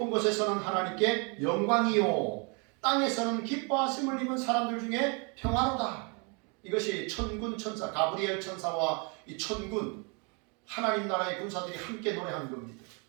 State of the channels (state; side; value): quieter; left; 33.8 dB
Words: 곳에서는 하나님께 영광이요, 땅에서는 기뻐하심을 입은 사람들 중에 평화로다. 이것이 천군 천사, 가브리엘 천사와 이 천군, 하나님 나라의 군사들이 함께 노래하는 겁니다.